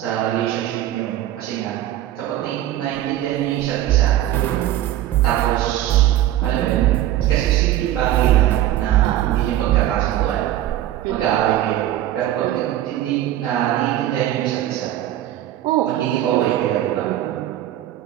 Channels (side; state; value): left; quieter; 13.1 dB